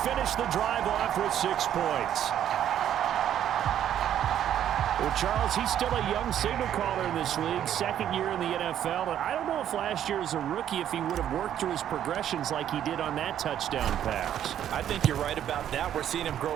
finish the drive off with 6 points. Well, Charles, he's still a young signal caller in this league, 2nd year in the NFL. And I don't know if last year as a rookie, if he would have worked through his progressions like he did on that touchdown pass. I think you're right about that. We're seeing him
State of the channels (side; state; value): left; quieter; 10.5 dB